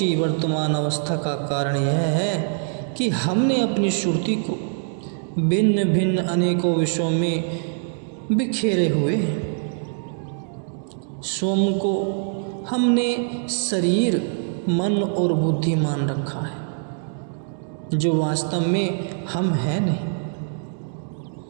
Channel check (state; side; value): silent; left; digital silence